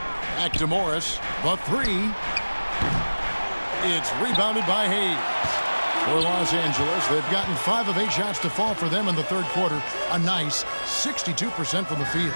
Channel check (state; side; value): inverted; both; correlation -1.00